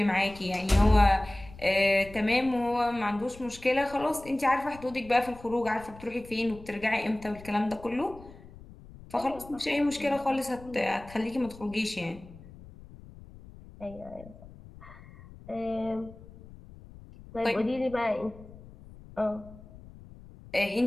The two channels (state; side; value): noise; left; rumble, 19 dB below the sound